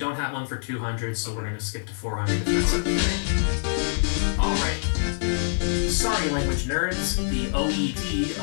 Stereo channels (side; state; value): right; silent; 62 dB below the other